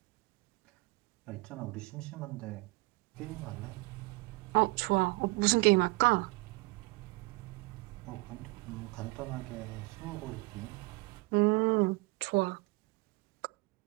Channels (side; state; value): left; quieter; 24.1 dB